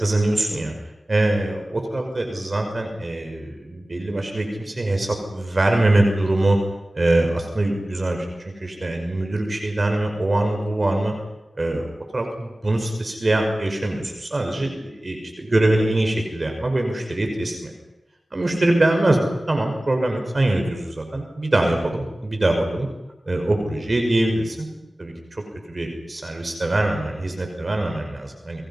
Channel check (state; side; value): normal; both; correlation 0.97